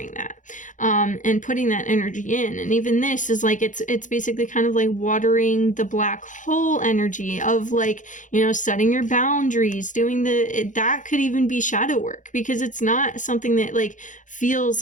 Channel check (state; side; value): late; right; 0.37 ms